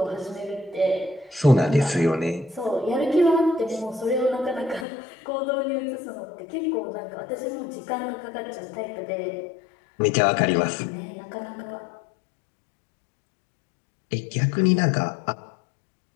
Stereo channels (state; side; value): drops out; right; at 4.9 s